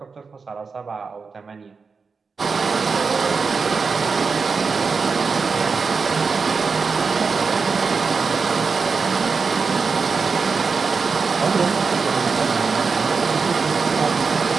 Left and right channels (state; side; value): quieter; left; 4.9 dB